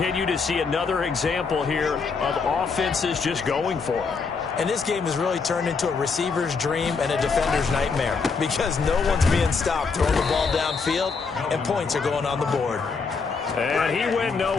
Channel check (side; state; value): right; quieter; 4.9 dB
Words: to see another example here of offenses just going for it. And this game has really turned into a receiver's dream and a defender's nightmare because no one's being stopped throwing the ball downfield, and points are going on the board. And he went